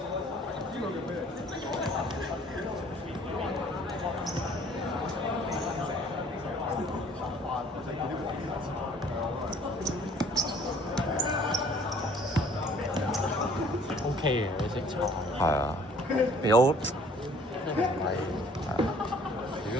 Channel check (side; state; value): both; normal; correlation 0.55